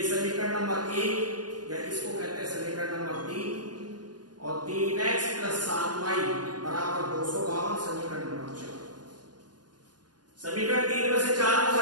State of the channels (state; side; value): late; left; 0.69 ms